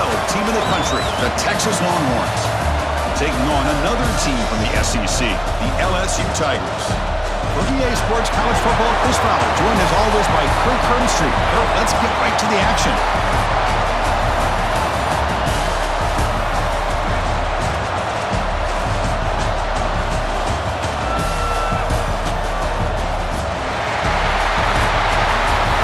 team in the country, the Texas Longhorns, taking on another team from the SEC, the LSU Tigers. For EA Sports College Football, Chris Fowler, joined as always by Kirk Herbstreit. Kirk, let's get right to the action.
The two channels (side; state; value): both; identical; correlation 1.00